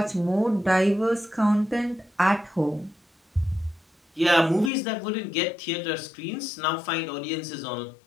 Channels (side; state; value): right; drops out; at 4.7 s